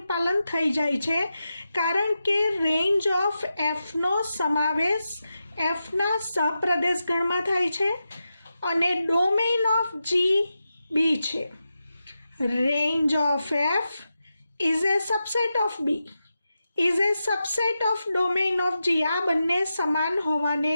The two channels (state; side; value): inverted; both; correlation -0.89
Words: પાલન થઈ જાય છે કારણ કે રેન્જ ઓફ એફનો સમાવેશ એફના સપ્રદેશ ગણમાં થાય છે અને ડોમેઇન ઓફ જી બી છે. Range of F is a subset of B, is a subset of domain of G. આ બંને સમાન હોવાને